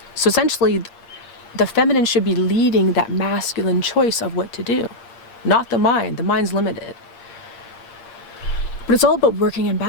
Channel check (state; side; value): late; right; 8.5 ms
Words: So essentially, the feminine should be leading that masculine choice of what to do, not the mind. The mind's limited. But it's all about working in